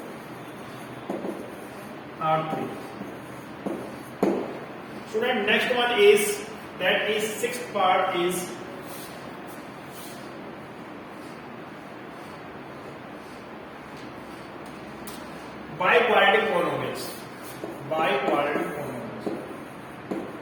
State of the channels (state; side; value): identical; both; correlation 1.00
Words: are 3. Student, next one is, that is sixth part is biquadratic polynomials. Biquadratic